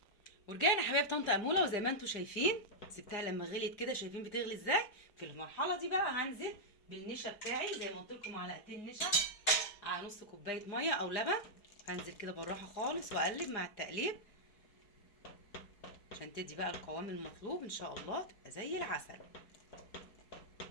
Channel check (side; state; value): right; late; 4.9 ms